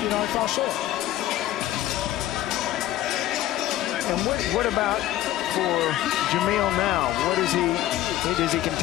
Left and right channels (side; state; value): right; quieter; 13.8 dB